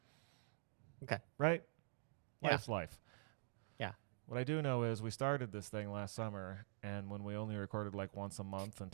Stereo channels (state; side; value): silent; left; digital silence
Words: Okay. Right? Yeah. Life's life. Yeah. What I do know is we started this thing last summer, and when we only recorded like once a month